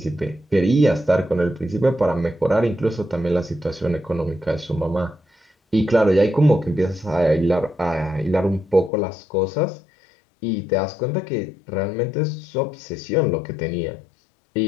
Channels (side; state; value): right; drops out; at 8.9 s